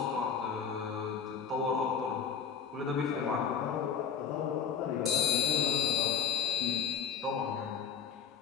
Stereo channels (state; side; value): quieter; right; 7.4 dB